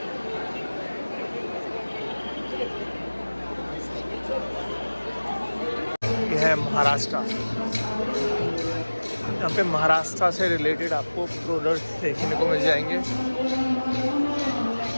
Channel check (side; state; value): both; inverted; correlation -1.00